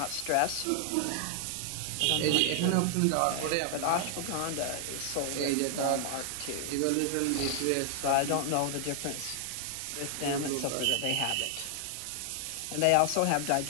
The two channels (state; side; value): different; both; correlation 0.00